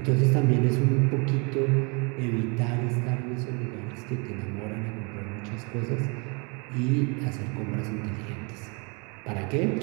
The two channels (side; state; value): left; quieter; 32.5 dB